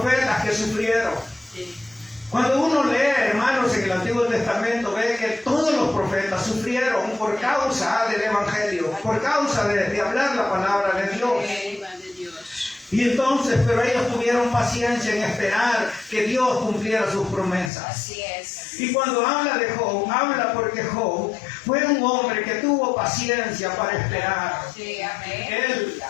que sufrieron. Cuando uno lee, hermanos, en el Antiguo Testamento, ve que todos los profetas sufrieron por causa del Evangelio, por causa de hablar la palabra de Dios. Y entonces, pero ellos tuvieron paciencia en esperar que Dios cumpliera sus promesas. Así es. Y cuando habla de Job, habla porque Job fue un hombre que tuvo paciencia para esperar. Sí, amén. Él,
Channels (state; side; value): drops out; right; at 17.7 s